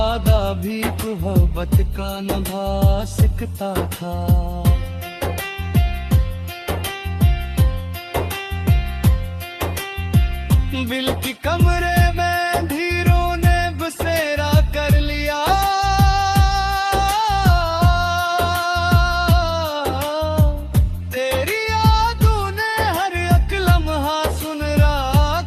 भी मोहब्बत का निभा सकता था। दिल की कमरे में धीरों ने बसेरा कर लिया,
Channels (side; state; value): both; identical; correlation 1.00